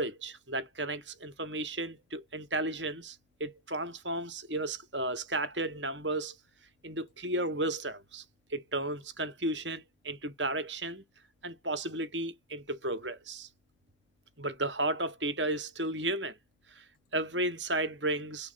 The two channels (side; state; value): both; normal; correlation -0.12